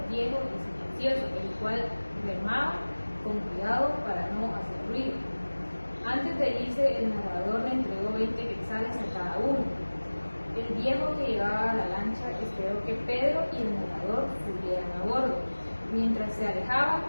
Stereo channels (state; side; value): inverted; both; correlation -1.00